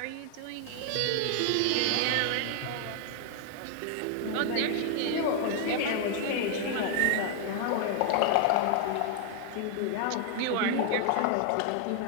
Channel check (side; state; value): both; different; correlation 0.00